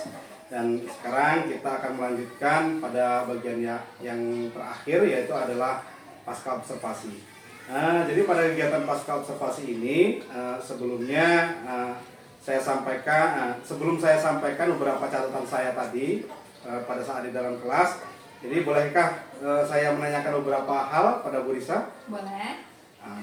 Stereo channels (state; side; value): identical; both; correlation 1.00